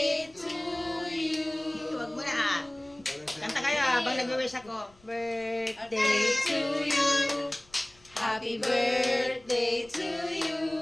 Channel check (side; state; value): left; noise; rumble, 28 dB below the sound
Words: to you. Huwag mo na. Kanta kayo habang nag-wish ako. Birthday to you. Happy birthday to you.